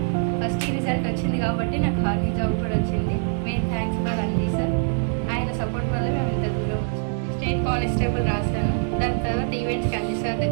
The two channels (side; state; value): left; silent; digital silence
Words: ఫస్ట్ రిజల్ట్ వచ్చింది కాబట్టి నాకు ఆర్మీ జాబ్ కూడా వచ్చింది. Main thanks for Anji sir. ఆయన సపోర్ట్ వల్ల మేము ఇంత దూరం వచ్చాము. స్టేట్ కానిస్టేబుల్ రాశాను. దాని తర్వాత ఈవెంట్స్కి అంజీ సార్